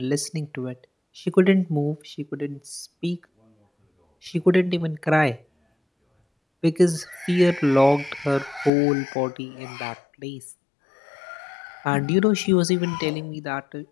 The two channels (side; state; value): right; drops out; at 8.7 s